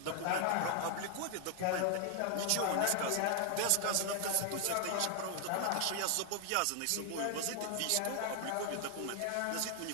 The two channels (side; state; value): both; different; correlation 0.00